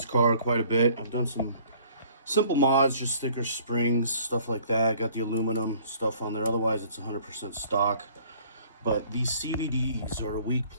car quite a bit. I've done some simple mods, just thicker springs, stuff like that. Got the aluminum stuff on there. Otherwise, it's 100% stock. But these CVDs are a weak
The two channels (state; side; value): inverted; both; correlation -0.55